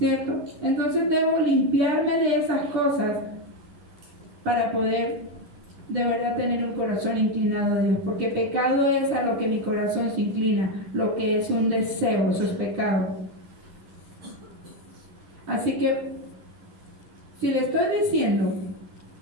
Entonces debo limpiarme de esas cosas para poder de verdad tener un corazón inclinado a Dios, porque pecado es a lo que mi corazón se inclina, lo que es un deseo, eso es pecado. Así que, si le estoy diciendo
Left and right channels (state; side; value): late; left; 10 ms